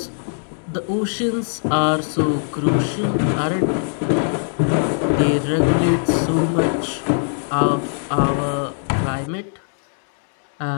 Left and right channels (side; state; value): right; silent; digital silence